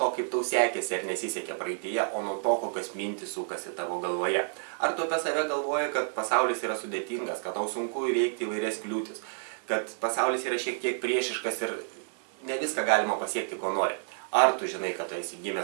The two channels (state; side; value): silent; left; digital silence